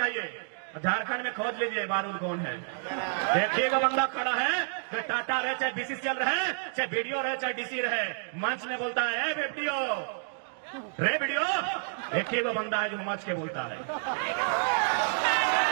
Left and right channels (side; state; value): left; silent; digital silence